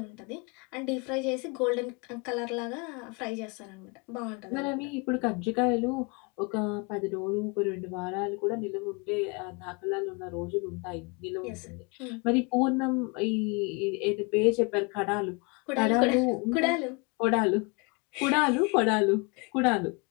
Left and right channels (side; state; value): right; quieter; 30.4 dB